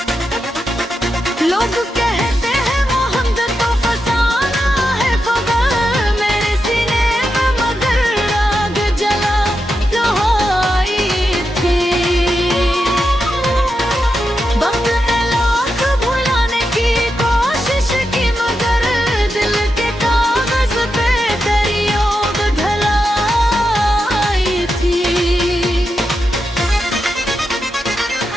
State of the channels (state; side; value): normal; both; correlation 0.87